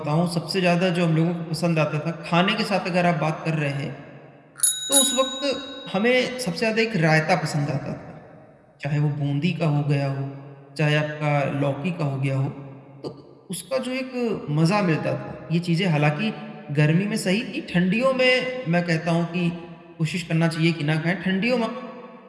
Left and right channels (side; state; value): both; identical; correlation 1.00